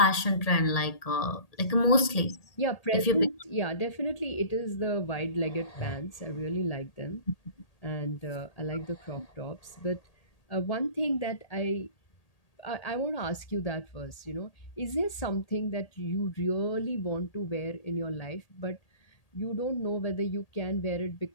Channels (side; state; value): right; late; 1.8 ms